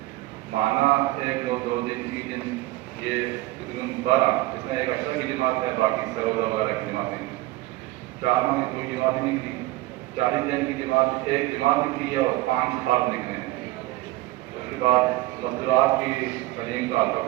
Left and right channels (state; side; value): quieter; left; 18.4 dB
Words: माना 1, 2, 2 दिन 3 दिन, ये तकरीबन 12, इसमें एक अशरा की जमात है, बाकी सरोजा वगैरह की जमातें। 4 माह की कोई जमात नहीं निकली, 40 दिन की जमात एक जमात निकली है और 5 फर्द निकले हैं। उसके बाद मजदूरात की तलीम का हल्का